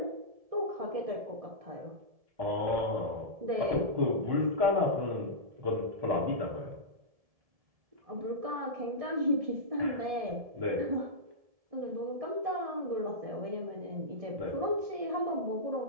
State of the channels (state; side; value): late; left; 1.7 ms